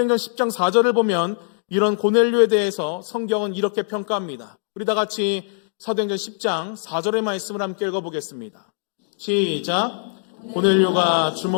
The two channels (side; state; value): right; silent; digital silence